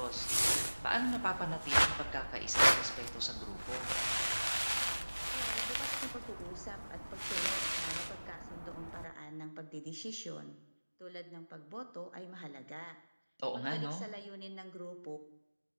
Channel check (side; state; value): both; inverted; correlation -1.00